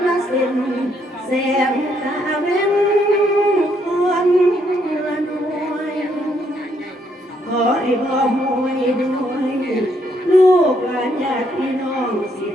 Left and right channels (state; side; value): normal; both; correlation 0.72